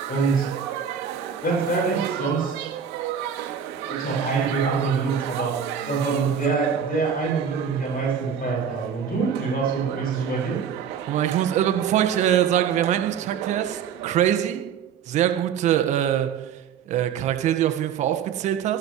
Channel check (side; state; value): left; quieter; 7.5 dB